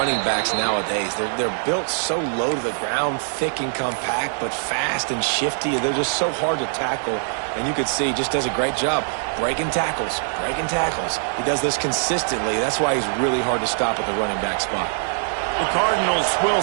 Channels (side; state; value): left; silent; 64 dB below the other